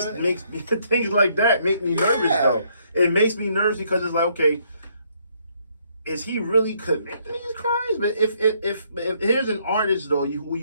makes me, things like that make me nervous though. It makes me nervous because it's like, okay, is he really committing these crimes? But if here's an artist though, who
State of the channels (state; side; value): inverted; both; correlation -0.69